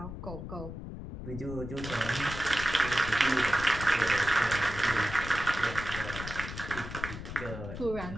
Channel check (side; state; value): left; noise; rumble, 9 dB below the sound